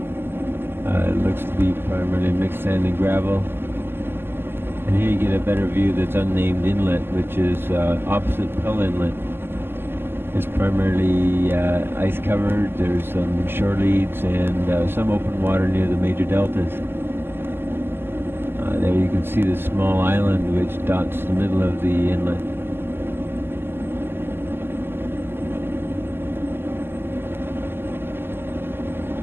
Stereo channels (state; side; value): late; left; 0.11 ms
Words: It looks to be primarily mixed sand and gravel. And here you get a better view that's unnamed inlet, which is opposite Pell Inlet. It's primarily ice covered. There's some shore leads and some open water near the major deltas. There you can see the small island which dots the middle of the inlet.